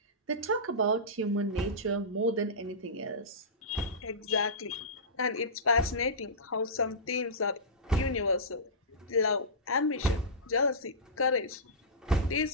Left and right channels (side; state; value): both; normal; correlation -0.17